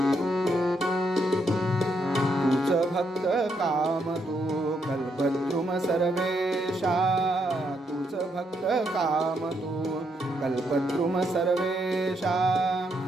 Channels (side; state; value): both; normal; correlation 0.77